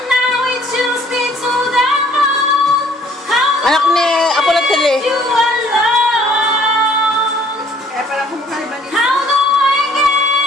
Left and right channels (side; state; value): both; normal; correlation 0.58